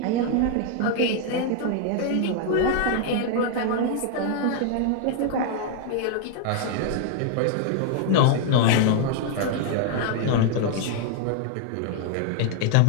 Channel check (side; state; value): both; different; correlation 0.00